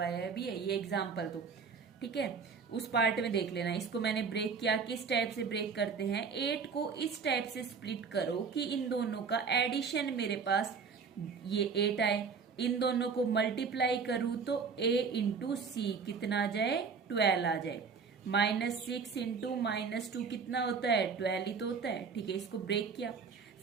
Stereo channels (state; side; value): quieter; left; 5.5 dB